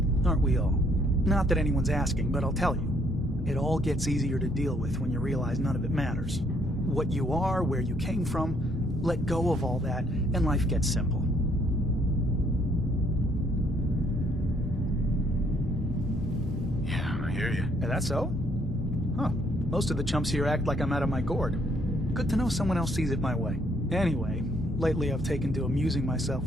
aren't we all? Not that anyone's asking, but I'll tell you. It all gets easier to deal with when you realize none of it matters. What you are, where you came from, let go of all that, and life gets simple. Yeah, I hear you. Is that so? Huh. Most of the chumps here act like I'm out of my gourd. Good to know someone else sees it my way. Anyway, lately I've taken to amusing myself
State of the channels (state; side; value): normal; both; correlation 0.68